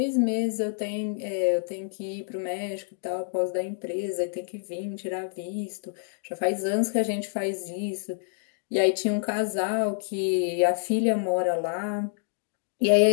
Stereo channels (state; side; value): silent; right; digital silence